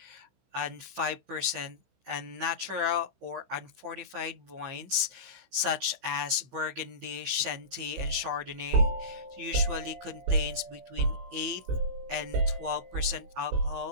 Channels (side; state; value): left; late; 16 ms